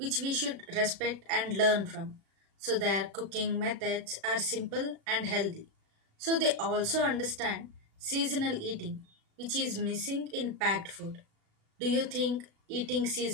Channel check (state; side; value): late; left; 36 ms